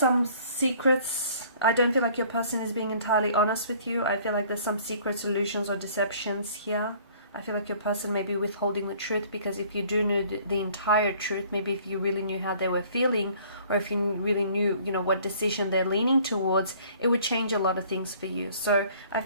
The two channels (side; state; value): both; inverted; correlation -0.55